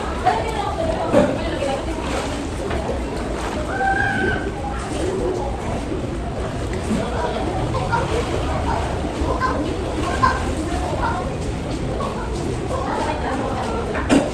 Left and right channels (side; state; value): both; identical; correlation 1.00